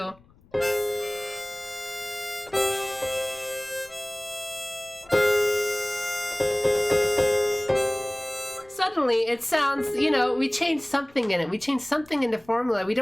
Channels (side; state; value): left; noise; rumble, 28 dB below the sound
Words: Suddenly, it sounds, you know, we changed something in it. We changed something in the formula. We